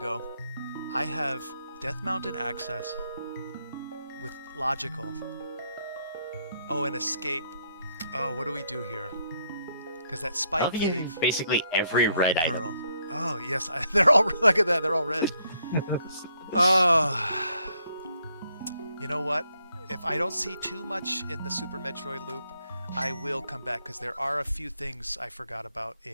I have Death Mountain access with logical. Oh, an escape. Oh, what do we do here? Because that spike cave. Basically every red item. Pearl. Oh yes, they're all look at that. They're all red. Oh, you know what? If I don't see too much in the Super Metroid loop, I will come back because there are a few things I forgot about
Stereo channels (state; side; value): inverted; both; correlation -0.73